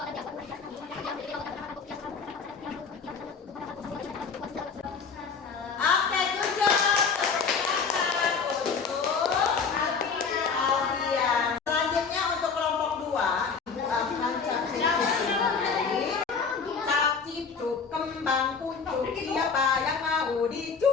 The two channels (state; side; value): quieter; right; 5.5 dB